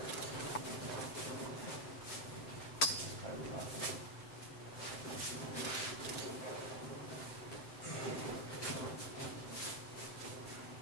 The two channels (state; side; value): late; right; 7.8 ms